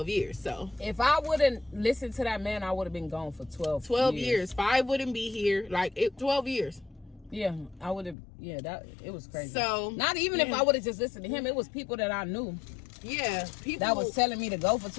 years. So if I wouldn't listen to that man, I would have been gone for 12 years. 5 wouldn't be here. Like, 12 years. Yeah, I would have. Yeah, it was crazy. So not even if I would have just listened to him, it was people that I knew. Yeah, people that was telling me to go for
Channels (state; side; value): drops out; right; at 8.2 s